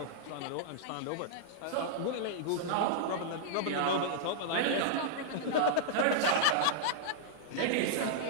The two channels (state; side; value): different; both; correlation -0.01